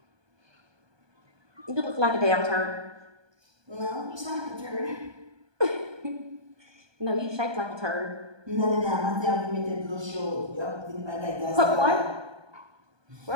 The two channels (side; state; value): left; late; 1.2 ms